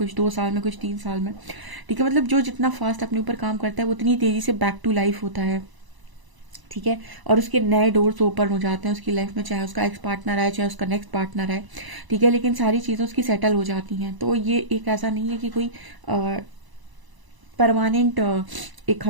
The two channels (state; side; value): late; left; 1.0 ms